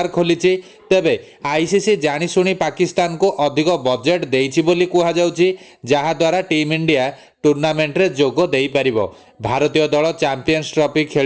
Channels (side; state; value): both; identical; correlation 1.00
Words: खोली। तेबे आईसीसी जाशुणी पाकिस्तान को अधिक बजेट देइछि बोली कुहा जाउछि, जहा द्वारा टीम इंडिया टूर्नामेंट रे जोग देई परिबो। भारतीय दल चैंपियंस ट्रॉफी